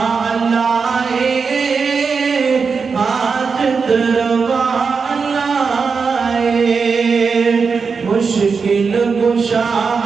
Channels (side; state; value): left; quieter; 5.2 dB